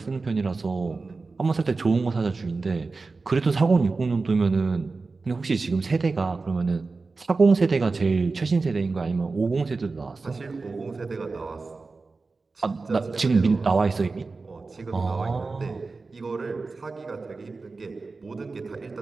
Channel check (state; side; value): quieter; left; 4.0 dB